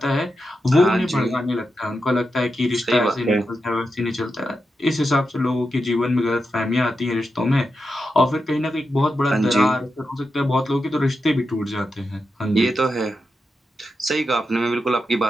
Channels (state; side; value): normal; both; correlation 0.88